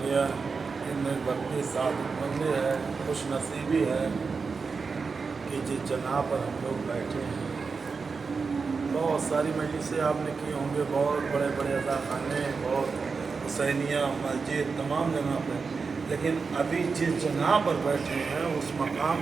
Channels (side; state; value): left; quieter; 4.9 dB